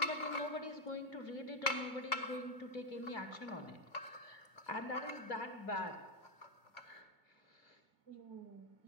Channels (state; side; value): late; right; 2.5 ms